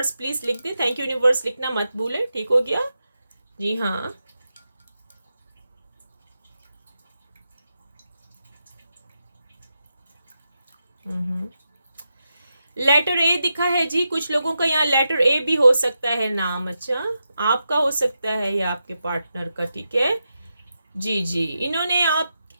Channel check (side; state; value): both; inverted; correlation -0.88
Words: please लिख दे, थैंक यू यूनिवर्स लिखना मत भूले, ठीक हो गया। जी हाँ, लेटर ए दिखा है जी, कुछ लोगों का यहाँ लेटर ए भी हो सकता है नाम। अच्छा, आपका हो सकता है या आपके पार्टनर का, ठीक है। जी जी, इन्होंने